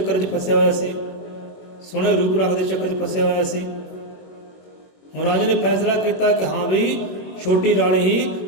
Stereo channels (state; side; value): late; right; 21 ms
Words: 'ਚ ਫਸਿਆ ਹੋਇਆ ਸੀ, ਸੋਹਣੇ ਰੂਪ ਰੰਗ ਦੇ ਚੱਕਰ 'ਚ ਫਸਿਆ ਹੋਇਆ ਸੀ। ਹੁਣ ਰਾਜਾ ਨੇ ਫੈਸਲਾ ਕੀਤਾ ਕਿ ਹਾਂ ਵੀ ਛੋਟੀ ਰਾਣੀ